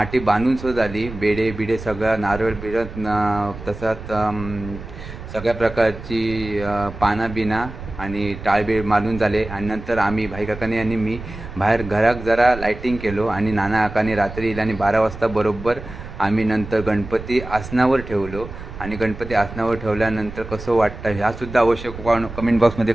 बांधून सुद्धा झाली. बेडे बिडे सगळं नारळ बिडत तसंच सगळ्या प्रकारची पानं बिना आणि टाळबीळ मारून झाले. आणि नंतर आम्ही भाई काकाने आणि मी बाहेर घरात जरा लायटिंग केलो. आणि नाना काकाने रात्री येईल आणि 12 वाजता बरोबर आम्ही नंतर गणपती आसनावर ठेवलो. आणि गणपती आसनावर ठेवल्यानंतर कसं वाटतं ह्यासुद्धा अवश्य कमेंट बॉक्समध्ये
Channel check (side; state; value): right; noise; rumble, 12 dB below the sound